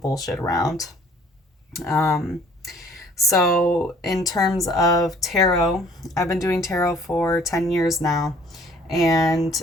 bullshit around. So, in terms of tarot, I've been doing tarot for 10 years now. And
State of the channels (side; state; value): both; normal; correlation 0.56